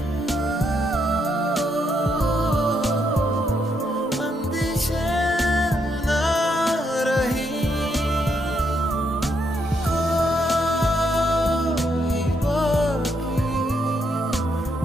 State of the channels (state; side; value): normal; both; correlation 0.77